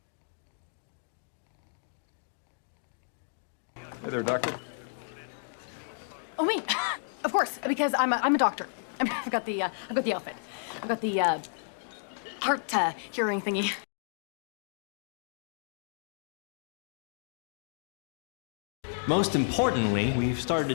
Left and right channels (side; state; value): right; silent; digital silence